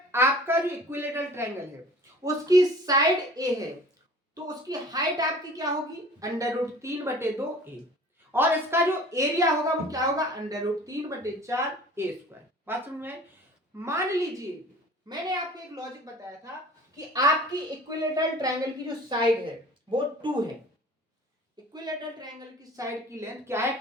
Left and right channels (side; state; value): both; normal; correlation 0.45